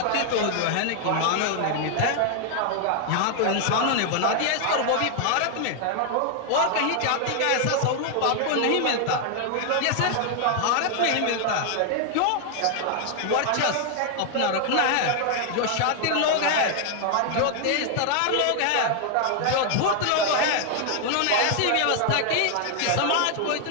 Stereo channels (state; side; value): different; both; correlation 0.00